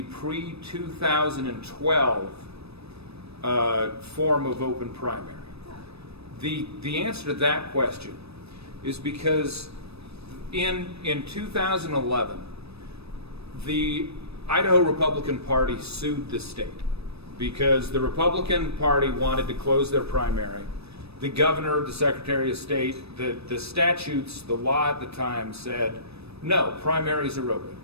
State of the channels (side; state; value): left; late; 0.78 ms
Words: pre-2012 form of open primary? The answer to that question is because in 2011, the Idaho Republican Party sued the state because the Republican Party wanted to close their primary. The governor, the Secretary of State, the statutes, the law at the time said, no, primaries are open.